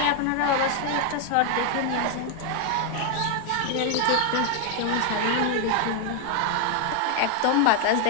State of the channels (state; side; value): different; both; correlation 0.00